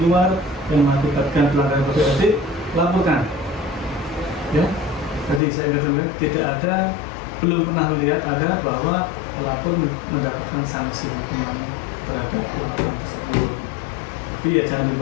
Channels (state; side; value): drops out; right; at 5.4 s